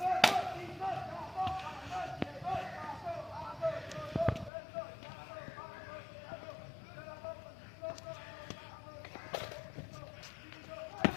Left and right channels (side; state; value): right; drops out; at 4.5 s